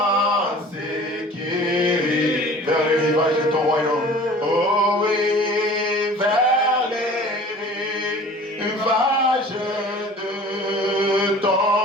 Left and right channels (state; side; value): normal; both; correlation 0.45